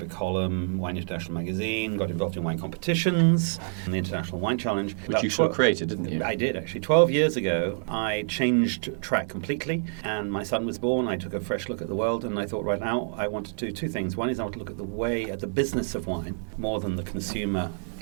column, Wine International magazine, got involved in wine competitions, and the International Wine Challenge. Which you sort of created, didn't you? I did, actually. 12 years ago, I changed track completely, and my son was born. I took a fresh look at the world, and I thought right now I want to do two things. One is I want to look at the business of wine, more than the consumer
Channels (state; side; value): silent; left; digital silence